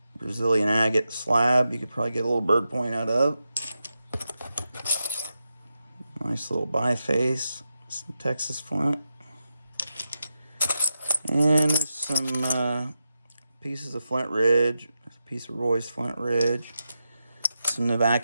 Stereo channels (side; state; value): both; inverted; correlation -0.88